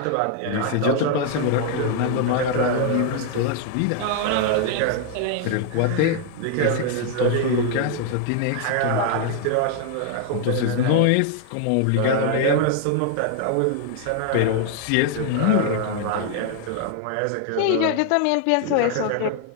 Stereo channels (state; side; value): different; both; correlation 0.00